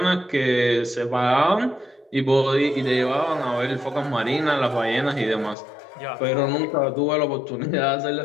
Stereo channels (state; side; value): drops out; right; at 5.6 s